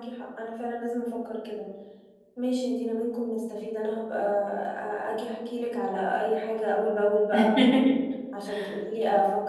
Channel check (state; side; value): identical; both; correlation 1.00